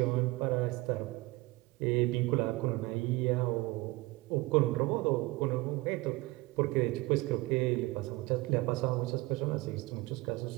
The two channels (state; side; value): quieter; left; 21.9 dB